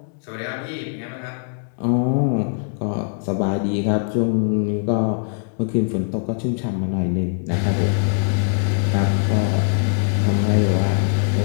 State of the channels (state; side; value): silent; right; 65 dB below the other